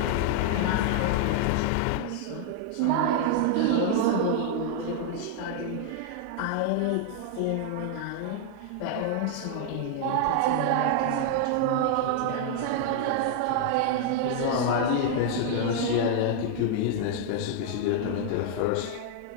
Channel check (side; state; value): both; different; correlation 0.00